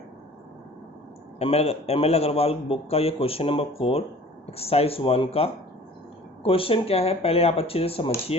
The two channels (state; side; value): normal; both; correlation 0.47